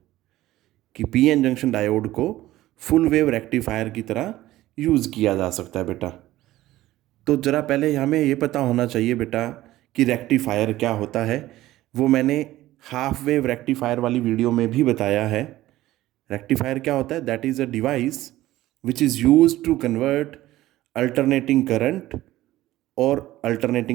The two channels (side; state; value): left; quieter; 15.7 dB